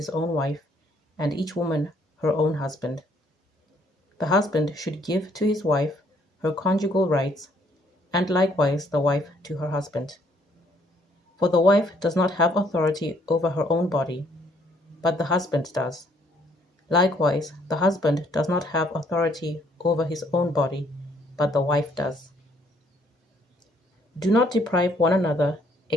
own wife, and each woman her own husband. The husband should give to his wife her conjugal rights, and likewise the wife to her husband. For the wife does not have authority over her own body, but the husband does. Likewise, the husband does not have authority over his own body, but the wife does. Do not deprive one another,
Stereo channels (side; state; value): both; normal; correlation 0.66